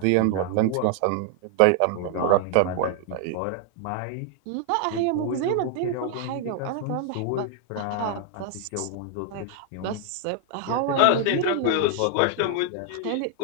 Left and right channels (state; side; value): different; both; correlation 0.00